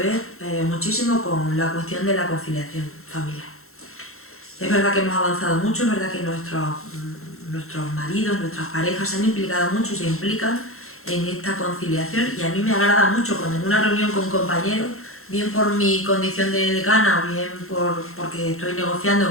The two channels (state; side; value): late; right; 0.62 ms